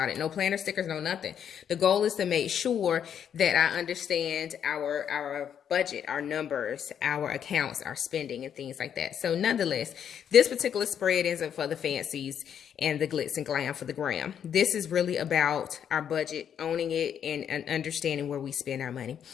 it. No planner stickers, no nothing. The goal is to make sure that I understand our budget, our numbers, our accounts, our spending, and things like that. So nonetheless, this particular spread isn't for the fancies and the glitz and glam for the gram. This is really about our budget, owning it, and understanding where we spend our money.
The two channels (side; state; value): right; quieter; 8.6 dB